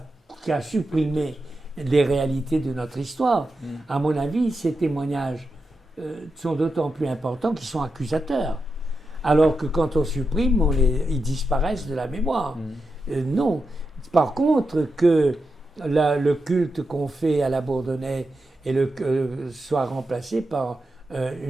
supprimé les réalités de notre histoire. À mon avis, ces témoignages sont d'autant plus importants qu'ils sont accusateurs. Alors que quand on supprime, ils disparaissent de la mémoire. Non. Par contre, que le culte qu'on fait à la Bourdonnais soit remplacé par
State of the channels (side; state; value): both; normal; correlation 0.88